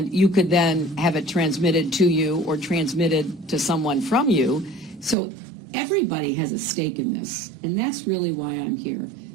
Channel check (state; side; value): drops out; left; at 5.2 s